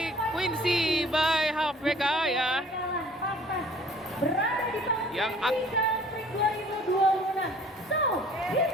Quincy by HVK ya, yang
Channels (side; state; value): both; normal; correlation 0.53